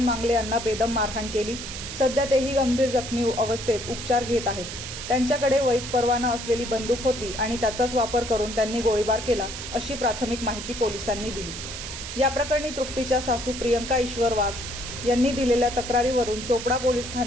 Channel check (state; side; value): noise; right; hiss, 8 dB below the sound